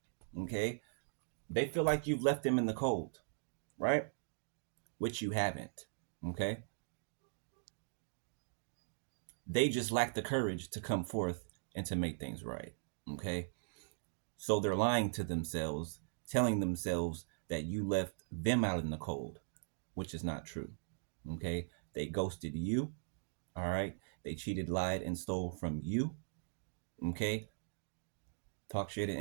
okay? They feel like you've left them in the cold, right? Which you haven't, okay? They just lack the courage to come forth and to make things right, okay? So they're lying to themselves, telling themselves that you left them out in the cold, which is not true, okay? They ghosted you, all right? They cheated, lied, and stole from you, okay? Talk shit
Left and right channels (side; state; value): left; silent; digital silence